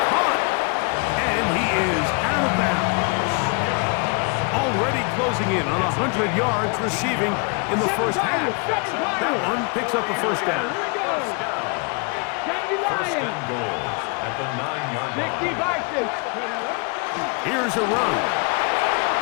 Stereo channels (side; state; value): right; quieter; 33.6 dB